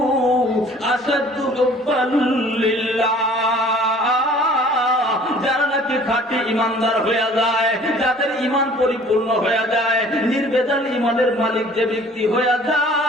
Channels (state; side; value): normal; both; correlation 0.51